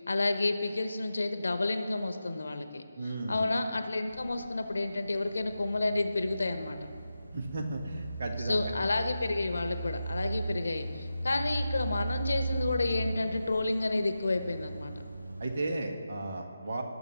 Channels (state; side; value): inverted; both; correlation -0.91